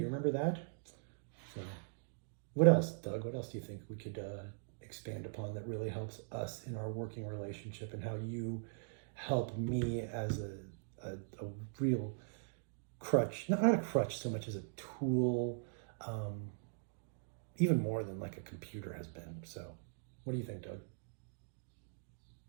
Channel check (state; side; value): silent; left; digital silence